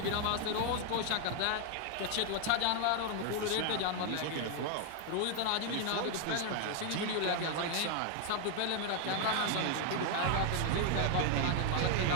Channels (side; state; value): both; different; correlation 0.00